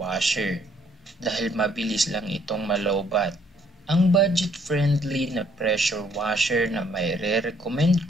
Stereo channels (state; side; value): normal; both; correlation 0.66